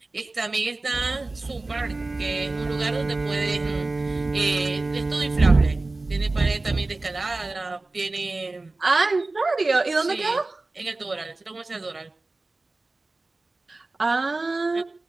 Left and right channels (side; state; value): left; quieter; 3.2 dB